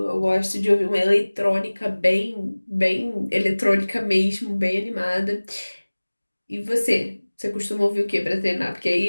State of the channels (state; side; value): inverted; both; correlation -1.00